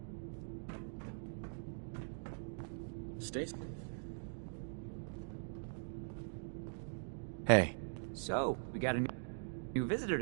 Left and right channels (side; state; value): left; silent; digital silence